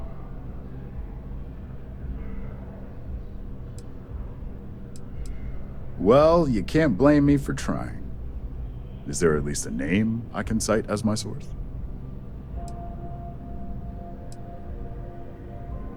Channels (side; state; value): both; identical; correlation 1.00